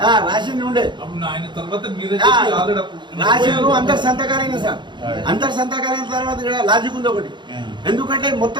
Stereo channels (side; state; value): left; late; 0.22 ms